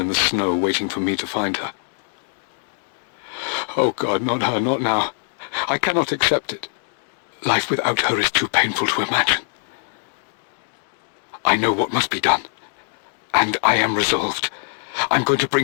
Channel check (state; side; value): silent; right; digital silence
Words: the snow, waiting for me to find her. Oh God, not her, not now. I cannot accept it. Life without her is too painful to imagine. I know what must be done, and I am resolved. I'm going to